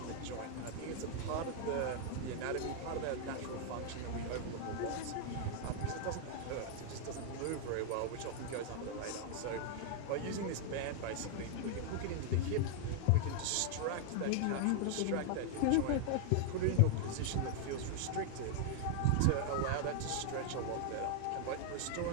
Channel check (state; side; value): different; both; correlation 0.00